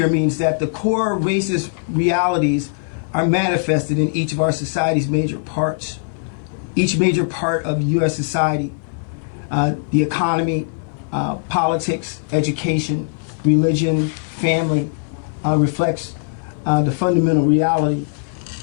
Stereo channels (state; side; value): silent; right; digital silence